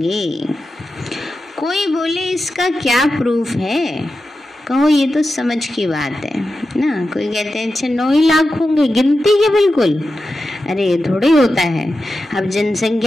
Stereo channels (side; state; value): both; normal; correlation 0.91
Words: कोई बोले इसका क्या प्रूफ है? कहो ये तो समझ की बात है ना। कोई कहते हैं अच्छा 9 ही लाख होंगे, गिनती के बिल्कुल। अरे ये थोड़े होता है। अब